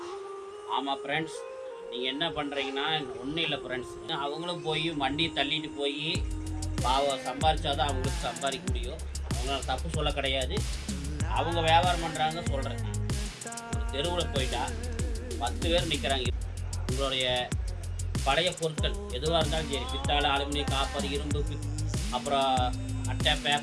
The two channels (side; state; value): both; identical; correlation 1.00